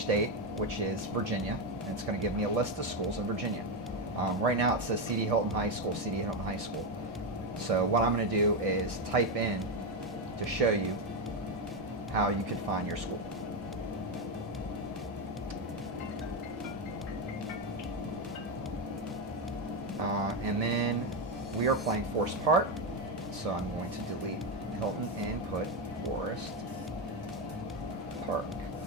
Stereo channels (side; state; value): both; normal; correlation 0.09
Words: which is Virginia, and it's going to give me a list of schools in Virginia. Right now it says CD Hilton High School, CD Hilton High School. So what I'm going to do is type in to show you how you could find your school. And then we are playing Forest Park, so I'm going to delete Hilton and put Forest Park.